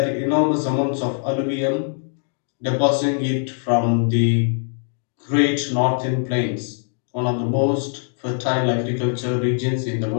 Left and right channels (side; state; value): right; silent; digital silence